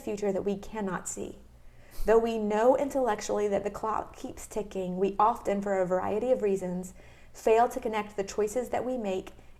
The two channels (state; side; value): identical; both; correlation 1.00